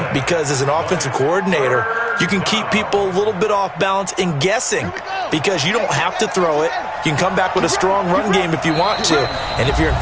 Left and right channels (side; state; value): both; identical; correlation 1.00